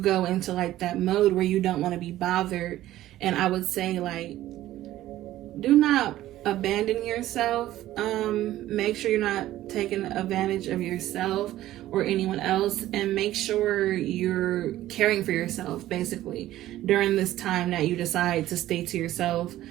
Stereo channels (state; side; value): quieter; left; 14.4 dB